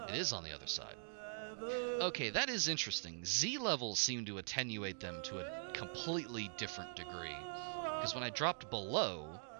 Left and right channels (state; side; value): silent; left; digital silence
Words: It is on the other side. Okay, that is interesting. Z levels seem to attenuate them to a completely different degree. Because when I dropped below,